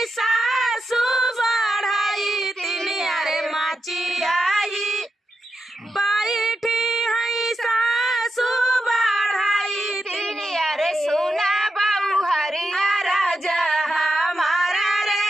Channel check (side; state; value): both; normal; correlation 0.87